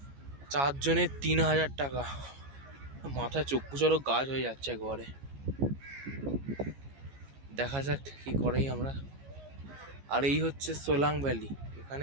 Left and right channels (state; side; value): late; left; 15 ms